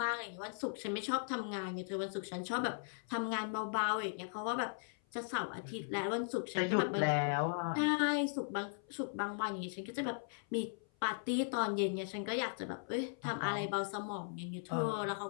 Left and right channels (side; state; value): right; silent; 52 dB below the other